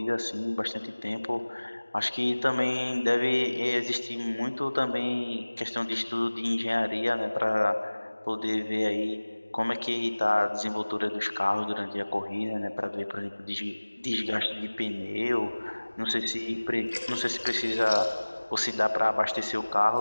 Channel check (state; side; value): inverted; both; correlation -1.00